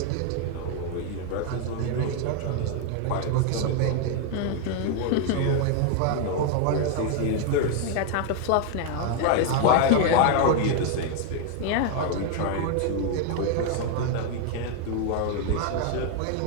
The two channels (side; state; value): both; different; correlation 0.01